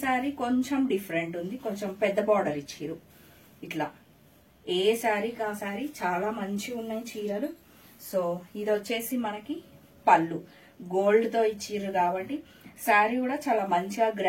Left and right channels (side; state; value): both; identical; correlation 1.00